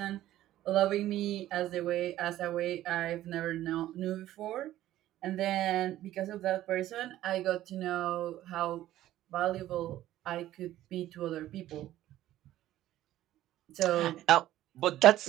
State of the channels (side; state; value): left; quieter; 13.9 dB